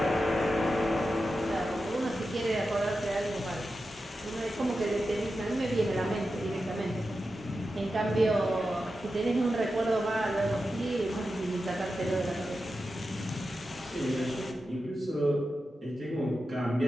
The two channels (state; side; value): normal; both; correlation 0.91